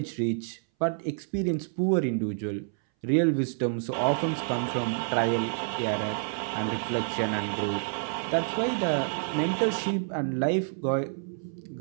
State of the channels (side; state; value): left; silent; 59 dB below the other